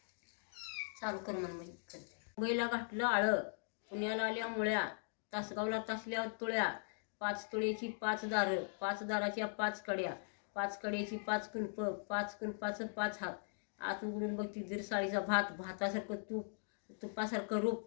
चालू कर मुंबईला घातलं आळं, पुण्याला आल्या मुळ्या, तासगावला तासल्या तुळ्या। 5 तुळेची 5 दारं, 5 दाराच्या 5 कड्या, 5 कड्याची 5 कुलप, 5 कुलपाचं 5 हात। आत उघडून बघती दीर साळीचा भात, भातासारखं तूप, तुपासारखं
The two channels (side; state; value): right; silent; digital silence